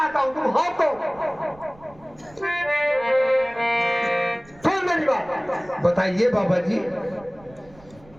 हूँ तुम हो कौन। सुन मेरी बात। बताइए बाबा जी।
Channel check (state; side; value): noise; right; rumble, 25 dB below the sound